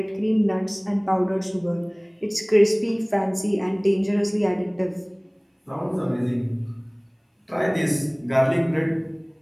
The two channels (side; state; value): both; identical; correlation 1.00